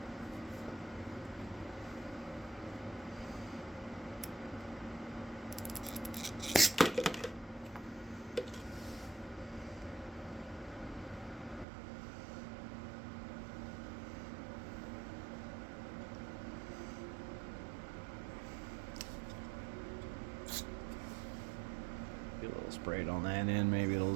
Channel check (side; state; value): left; drops out; at 11.7 s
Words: Get a little sprayed on that end, maybe it'll